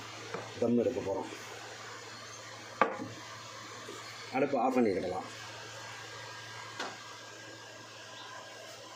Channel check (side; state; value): both; identical; correlation 1.00